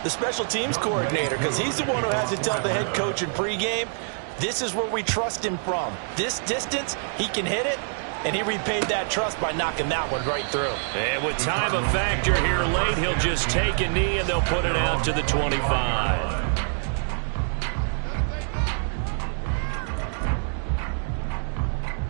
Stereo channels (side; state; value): left; silent; digital silence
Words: The special teams coordinator, because he's the one who has to tell the head coach in pregame, this is where we trust him from. This distance, he can hit it. and he repaid that trust by knocking that one right through. And with time a factor here late, he'll just take a knee, and they'll put it out to the 25.